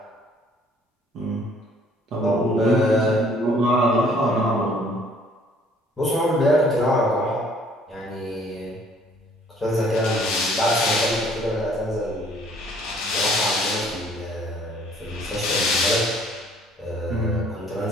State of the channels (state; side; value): normal; both; correlation 0.58